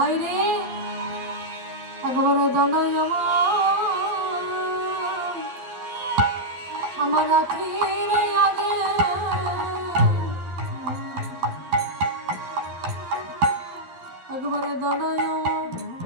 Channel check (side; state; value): left; late; 12 ms